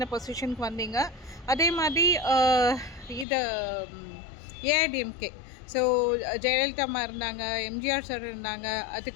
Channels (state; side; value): drops out; right; at 3.2 s